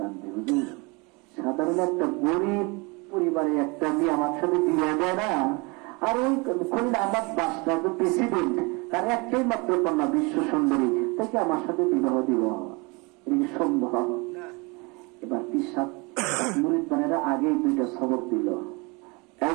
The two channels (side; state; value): left; quieter; 28.0 dB